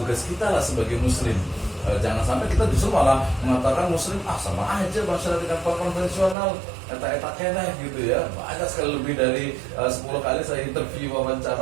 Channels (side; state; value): left; drops out; at 6.4 s